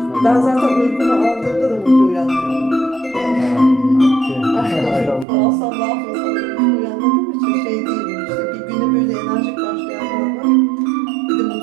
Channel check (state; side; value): drops out; left; at 5.2 s